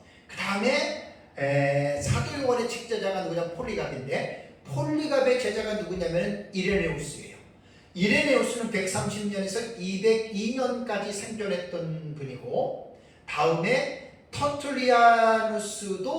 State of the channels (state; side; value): identical; both; correlation 1.00